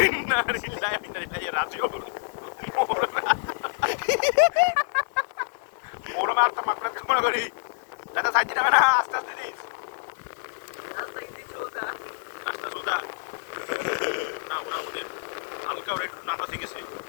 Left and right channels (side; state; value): right; silent; 60 dB below the other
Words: না রিলাই রাজিও ওরা মারতে মাকড়া কামড়া করি দাদা সাইড দিনা না আস্তে আস্তে দিস রাস্তা সোজা না ওরা ওদের হালকা ওরা একটু নাটা শিখেছে